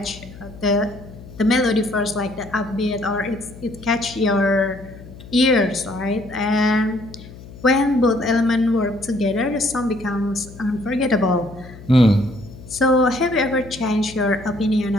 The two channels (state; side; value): noise; left; hum, 17 dB below the sound